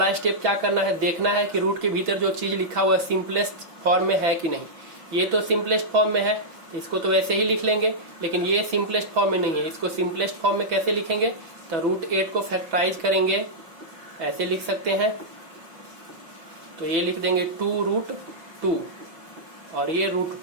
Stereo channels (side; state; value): left; late; 6.1 ms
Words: स्टेप क्या करना है, देखना है कि रूट के भीतर जो चीज लिखा हुआ है सिंपलेस्ट फॉर्म में है कि नहीं। ये तो सिंपलेस्ट फॉर्म में है, इसको तो वैसे ही लिख लेंगे, लेकिन ये सिंपलेस्ट फॉर्म में नहीं है। इसको सिंपलेस्ट फॉर्म में कैसे लिखेंगे, तो √8 को फैक्टराइज करेंगे, ऐसे लिख सकते हैं। तो ये लिख देंगे 2√2 और ये